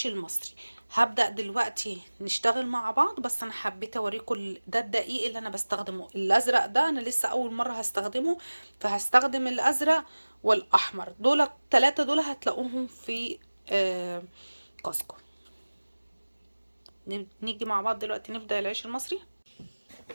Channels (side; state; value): both; inverted; correlation -1.00